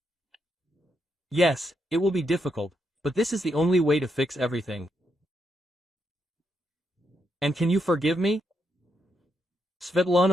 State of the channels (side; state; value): both; normal; correlation 0.80